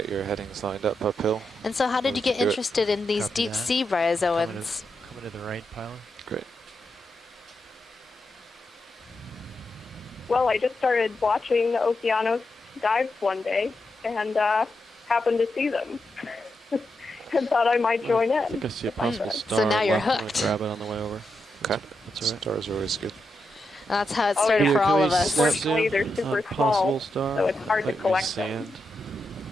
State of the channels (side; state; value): both; normal; correlation 0.85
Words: your headings lined up uphill. And so how did you get do it. interested in these Copy deep that. sea bryozoans? Coming to the right, Pilot. Great. Well, I just started watching the Okeanos dives one day and happened to see them and thought I might join I in. think I see a if I possible could. star. So now you're left. I'm gonna hooked. grab it on the way over. Okay. That's all right. Stars are always good. That's how it Oh, started yeah. for Can all we of us. snap Unfortunately, zoom they're super on possible small, star? so it's hard to Like collect sand. them.